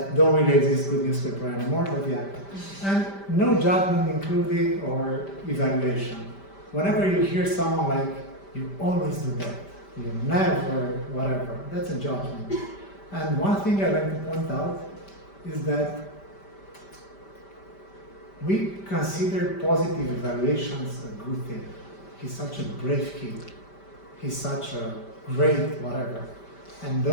don't really exist, good newspaper anymore, but yeah. And no judgment included or evaluation. Whenever you hear someone like, you always do that, you never, whatever, that's a judgment. And one thing I like to point out is that we consider positive evaluations a good thing. He's such a brave kid. He's such a great whatever. And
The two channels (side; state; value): right; late; 5.1 ms